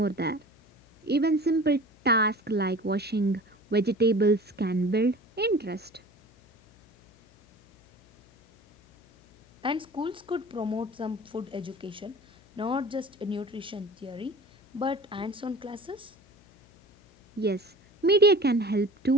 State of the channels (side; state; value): left; noise; hum, 29 dB below the sound